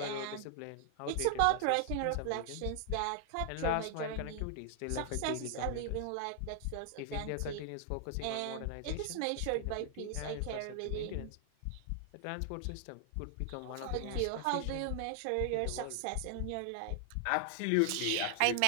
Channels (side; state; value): both; different; correlation 0.00